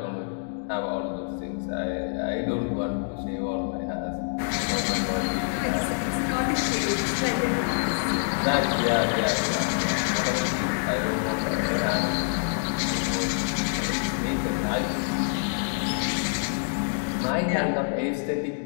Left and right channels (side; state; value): right; silent; digital silence